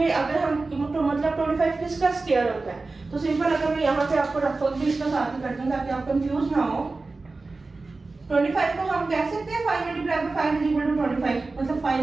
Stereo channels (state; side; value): quieter; left; 3.6 dB